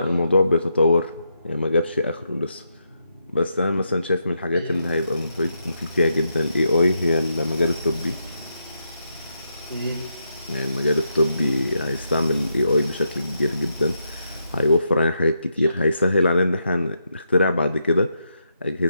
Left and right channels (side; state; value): both; inverted; correlation -0.82